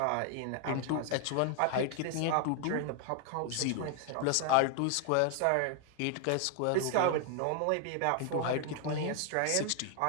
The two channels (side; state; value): both; different; correlation 0.00